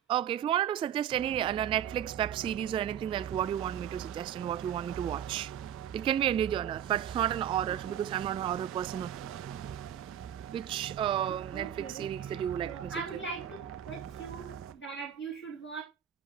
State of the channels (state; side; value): quieter; left; 9.9 dB